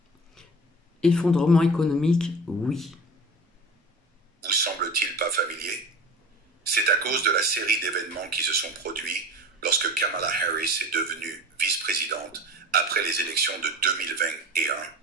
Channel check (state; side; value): normal; both; correlation 0.35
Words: Effondrement économique, oui. vous semble-t-il pas familier? C'est à cause de la série d'événements qui se sont produits lorsque Kamala Harris est devenue vice-présidente après les élections de 2021,